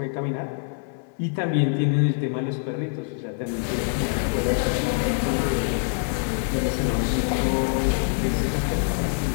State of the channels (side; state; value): right; silent; 58 dB below the other